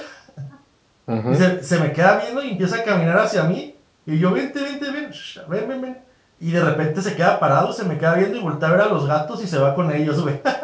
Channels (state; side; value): identical; both; correlation 1.00